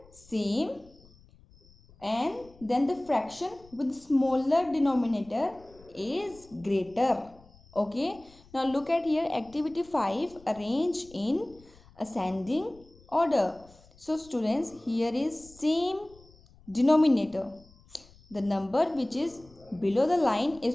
same and then the fraction with smaller denominator is greater. Okay, now look at here, activity 5, arrange in ascending order. So students, here is same denominator. The number which is below the line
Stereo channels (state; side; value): noise; left; rumble, 26 dB below the sound